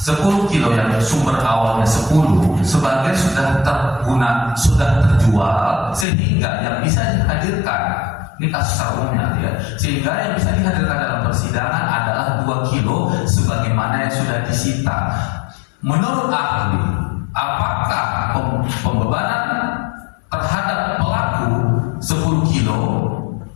kilo yang sumber awalnya 10, sebagian sudah terguna, sudah terjual, sehingga yang bisa dihadirkan, ini kasus umumnya ya, sehingga yang bisa dihadirkan dalam persidangan adalah 2 kilo sebagaimana yang sudah disita. Menurut ahli, apakah pembebanan terhadap pelaku 10 kilo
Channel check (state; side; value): drops out; right; at 6.1 s